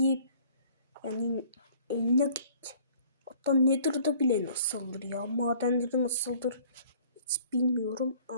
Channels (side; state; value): both; inverted; correlation -0.54